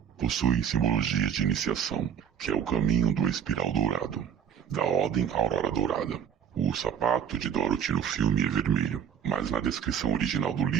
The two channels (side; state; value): left; quieter; 8.4 dB